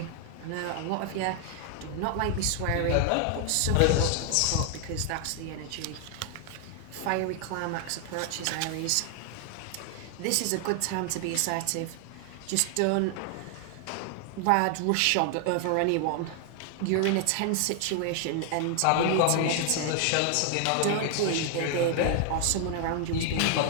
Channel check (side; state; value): both; different; correlation 0.00